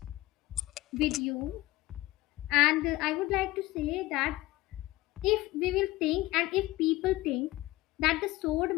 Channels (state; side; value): quieter; right; 18.3 dB